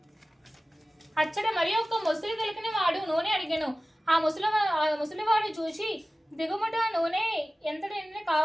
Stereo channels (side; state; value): both; normal; correlation 0.96